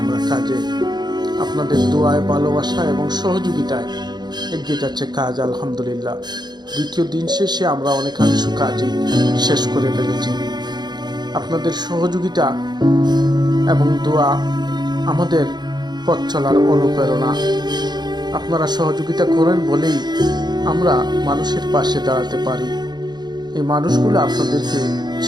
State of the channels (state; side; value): late; left; 0.21 ms